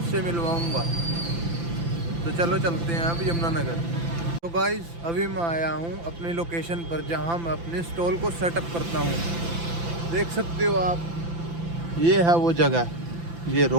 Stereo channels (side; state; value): left; late; 5.9 ms